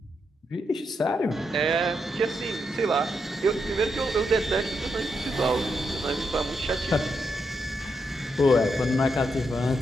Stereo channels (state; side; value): normal; both; correlation 0.82